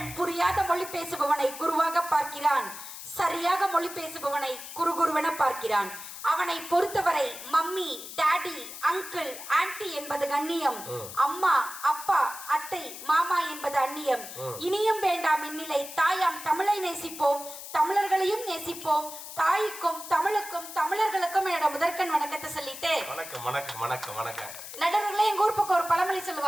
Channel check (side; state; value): left; noise; hiss, 11 dB below the sound